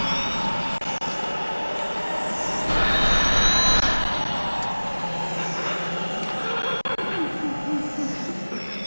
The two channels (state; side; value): inverted; both; correlation -1.00